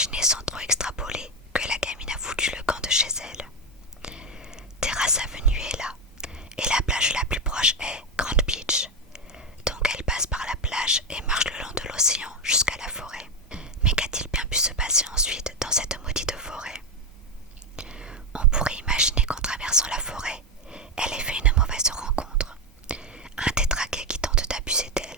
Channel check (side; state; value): both; normal; correlation 0.10